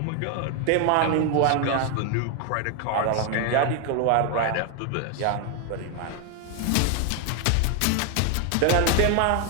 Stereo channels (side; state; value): both; different; correlation 0.01